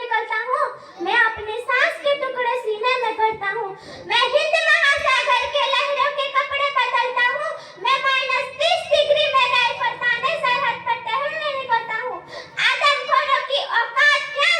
निकलता हूँ। मैं अपने सांस के टुकड़े सीने में भरता हूँ। मैं हिंद महासागर के लहरों के कपड़े बदलता हूँ। मैं -30 डिग्री में राइफल ताने सरहद पर टहलने निकलता हूँ। आदमखोरों की औकात क्या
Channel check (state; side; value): identical; both; correlation 1.00